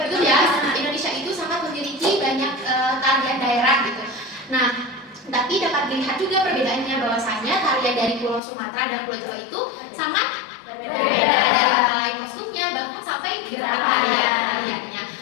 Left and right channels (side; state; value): right; drops out; at 8.4 s